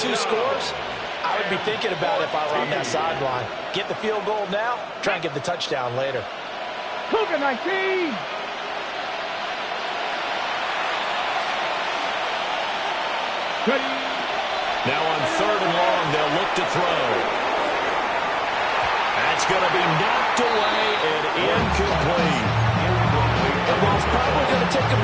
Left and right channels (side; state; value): both; identical; correlation 1.00